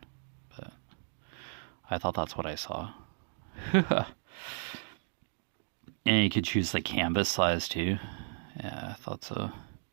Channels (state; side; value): silent; left; digital silence